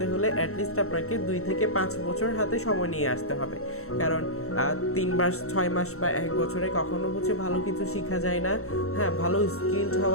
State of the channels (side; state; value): right; late; 0.63 ms